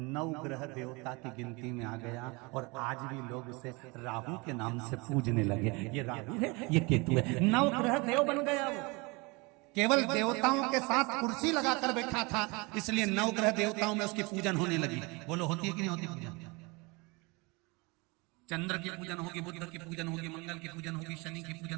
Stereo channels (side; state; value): left; quieter; 26.9 dB